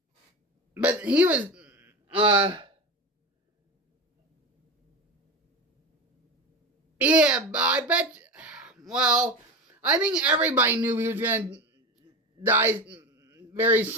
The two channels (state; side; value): normal; both; correlation 0.25